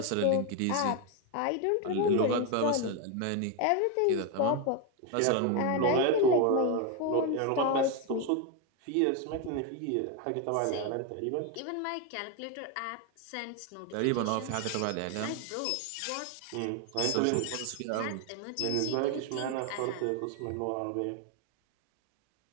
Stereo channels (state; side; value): different; both; correlation 0.02